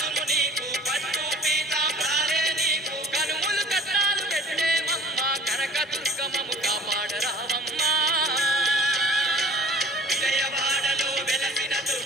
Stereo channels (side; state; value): both; normal; correlation 0.47